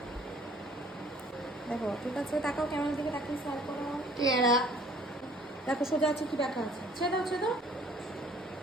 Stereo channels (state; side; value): normal; both; correlation 0.55